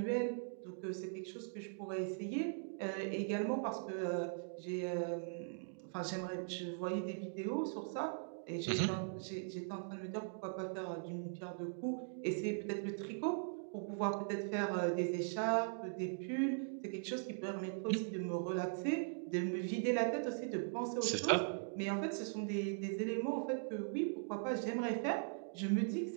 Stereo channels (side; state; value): left; silent; digital silence